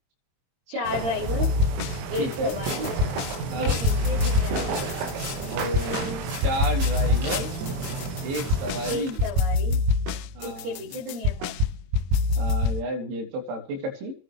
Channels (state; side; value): late; left; 22 ms